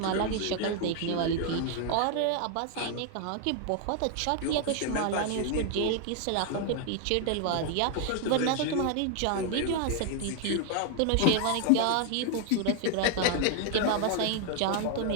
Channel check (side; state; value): both; different; correlation 0.00